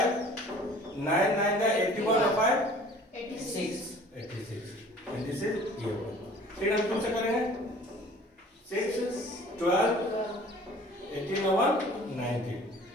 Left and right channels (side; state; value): both; normal; correlation 0.49